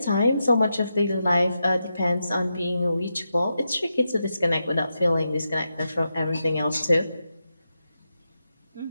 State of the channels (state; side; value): inverted; both; correlation -0.87